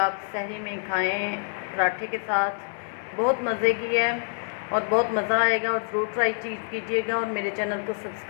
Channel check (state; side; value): silent; right; digital silence